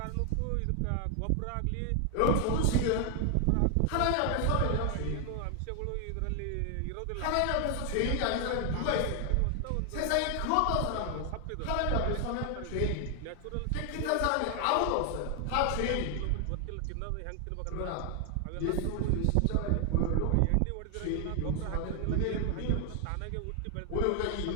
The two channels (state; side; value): different; both; correlation 0.00